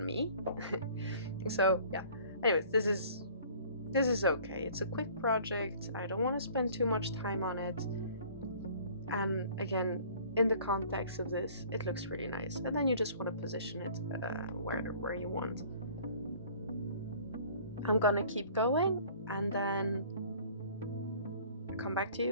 me. So yeah, anyways, this is okay. It's a quick project. I don't want to spend too much time on it, and again, in the context of this, it looks really nice, and then you just want to position it where you want. I'm gonna keep going, and then I'll come back to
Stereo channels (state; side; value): inverted; both; correlation -0.51